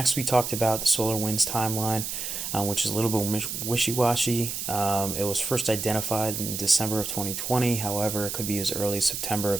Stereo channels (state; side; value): noise; right; hiss, 4 dB below the sound